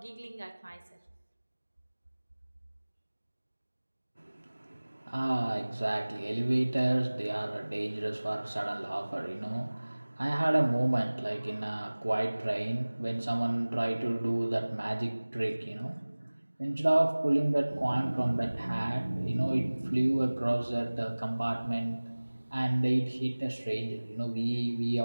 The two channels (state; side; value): inverted; both; correlation -1.00